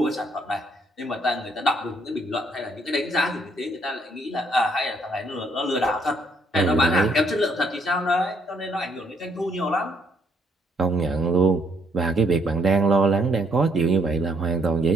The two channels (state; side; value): normal; both; correlation 0.69